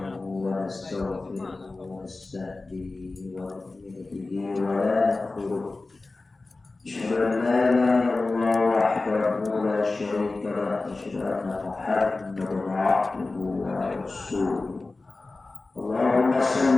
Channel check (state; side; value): quieter; right; 3.4 dB